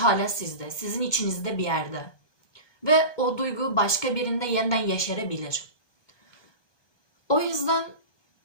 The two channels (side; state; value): right; late; 1.2 ms